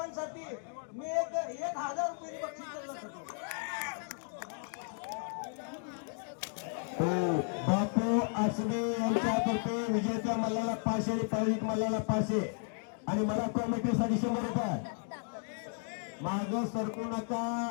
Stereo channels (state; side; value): silent; right; 55 dB below the other